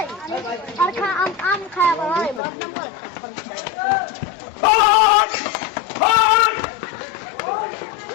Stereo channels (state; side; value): drops out; right; at 2.4 s